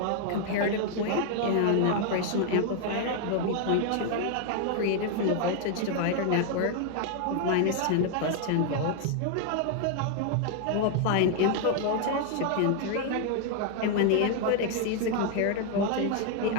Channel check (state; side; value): different; both; correlation 0.00